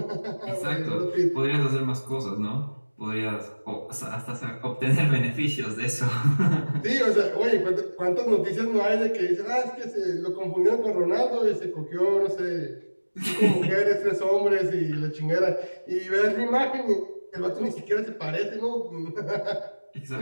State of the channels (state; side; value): inverted; both; correlation -1.00